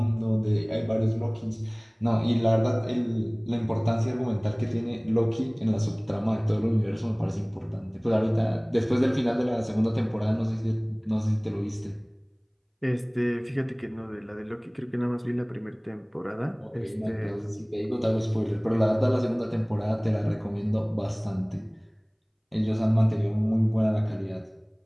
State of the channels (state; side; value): identical; both; correlation 1.00